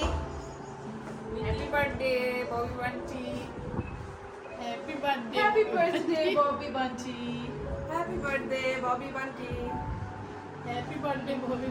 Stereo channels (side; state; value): both; identical; correlation 1.00